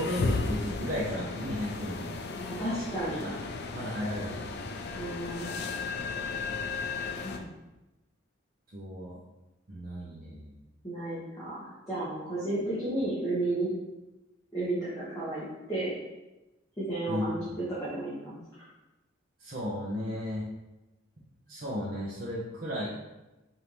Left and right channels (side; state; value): both; normal; correlation 0.54